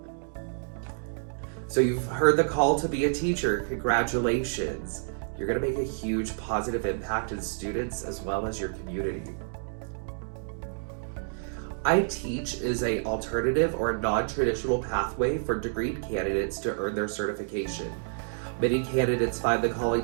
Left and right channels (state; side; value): silent; left; digital silence